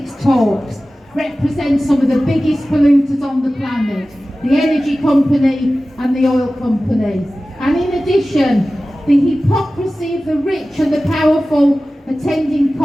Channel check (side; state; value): both; normal; correlation 0.96